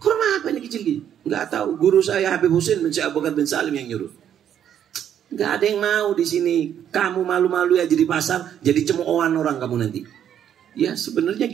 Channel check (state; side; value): quieter; left; 9.6 dB